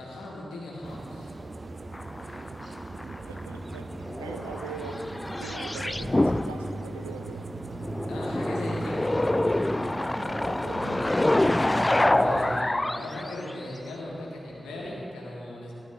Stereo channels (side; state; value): both; normal; correlation 0.97